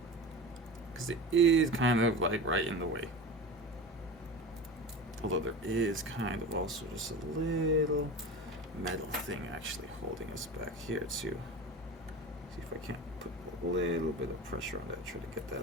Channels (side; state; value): both; normal; correlation 0.31